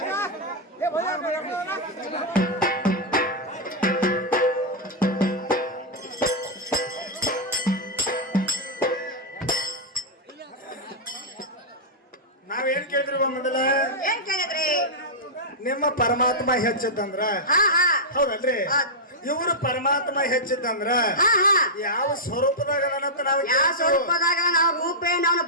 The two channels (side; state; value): both; normal; correlation -0.08